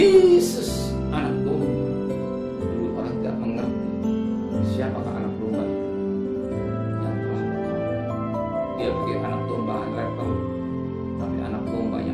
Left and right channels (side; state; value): both; identical; correlation 1.00